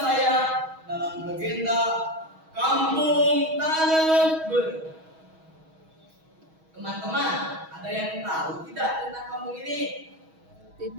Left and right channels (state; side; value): late; left; 6.3 ms